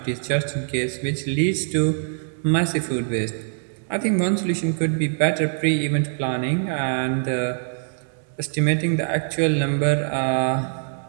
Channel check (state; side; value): silent; left; 63 dB below the other